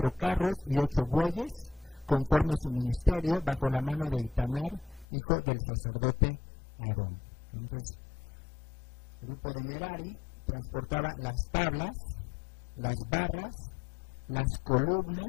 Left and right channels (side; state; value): right; drops out; at 5.1 s